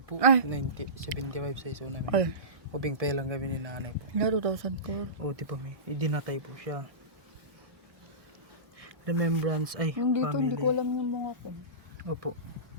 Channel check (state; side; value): late; left; 1.6 ms